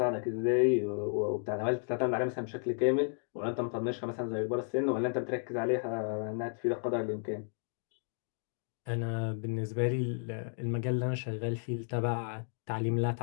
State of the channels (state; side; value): silent; right; digital silence